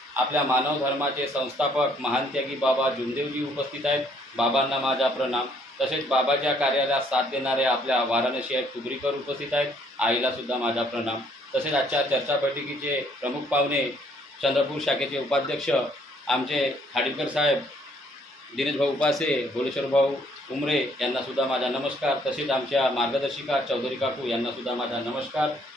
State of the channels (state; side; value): normal; both; correlation 0.65